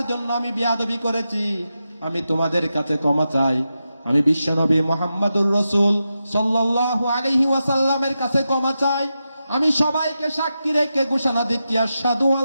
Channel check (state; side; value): inverted; both; correlation -0.89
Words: জন্য আমি বিয়াদবি করেছি। আমি তোমাদের কাছে ক্ষমা চাই। আমি বিশ্বনবী মুহাম্মদুর রাসূল সাল্লাল্লাহু আলাইহি ওয়াসাল্লামের কাছে ক্ষমা চাই। আমি সবাইকে সাক্ষী রেখে ঘোষণা দিচ্ছি, আশহাদু